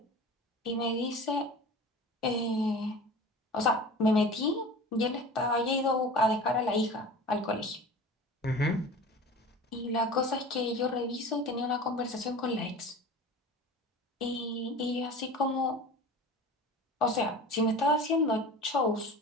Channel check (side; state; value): both; normal; correlation 0.37